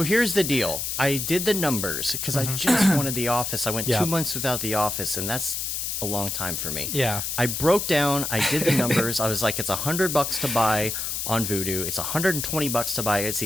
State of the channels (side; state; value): left; noise; hiss, 3 dB below the sound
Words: here's the deal. I did the numbers because I just wanted The Office. I went Yeah. 2 months without The Office, and that's a long time for me. Yeah. I broke down. I did the numbers. I was like, it's $100 to buy on Vudu. It's $120 to buy it